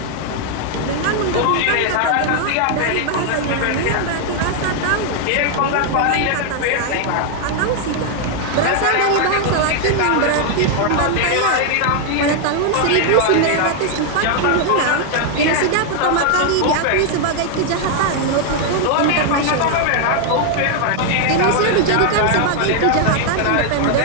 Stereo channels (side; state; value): both; different; correlation 0.00